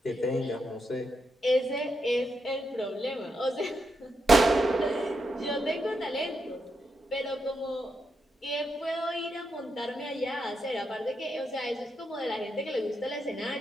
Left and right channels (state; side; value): normal; both; correlation 0.83